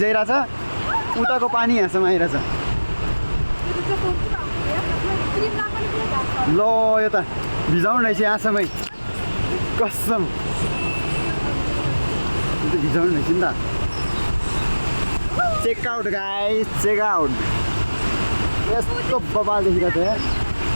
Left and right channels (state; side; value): inverted; both; correlation -1.00